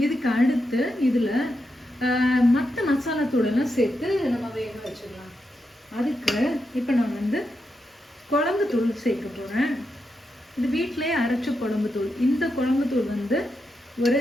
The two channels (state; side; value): normal; both; correlation 0.85